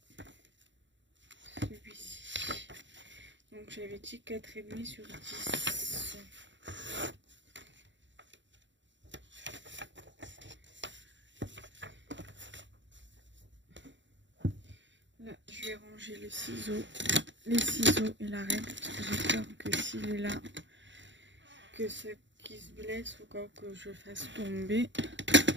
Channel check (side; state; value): left; late; 0.54 ms